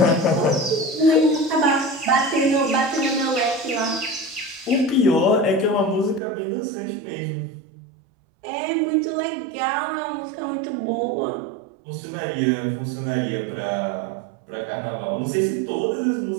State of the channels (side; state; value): left; drops out; at 6.2 s